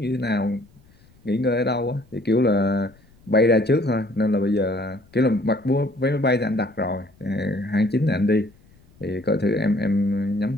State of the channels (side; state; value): left; noise; rumble, 29 dB below the sound